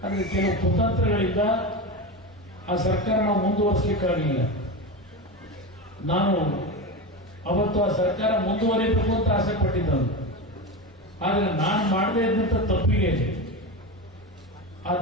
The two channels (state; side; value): normal; both; correlation 0.21